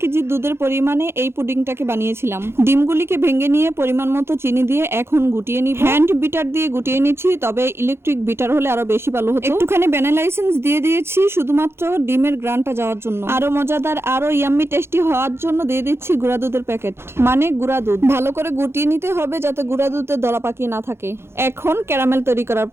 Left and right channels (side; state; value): left; late; 0.12 ms